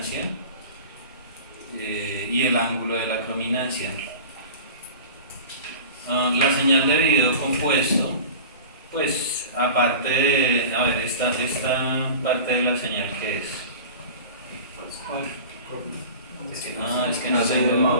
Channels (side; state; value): both; inverted; correlation -0.37